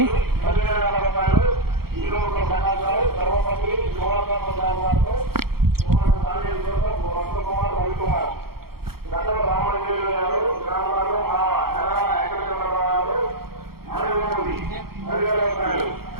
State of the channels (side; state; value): left; late; 0.94 ms